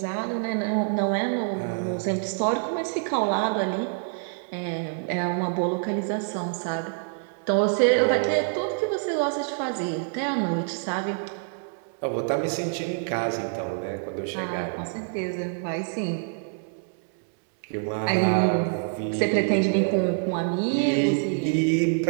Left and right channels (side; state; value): left; silent; digital silence